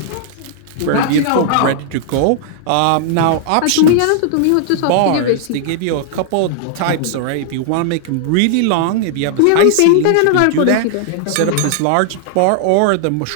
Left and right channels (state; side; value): different; both; correlation -0.01